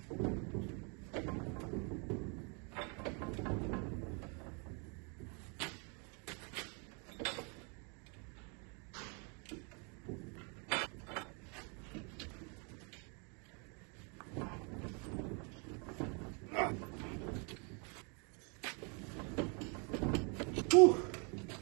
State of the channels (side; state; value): left; quieter; 35.5 dB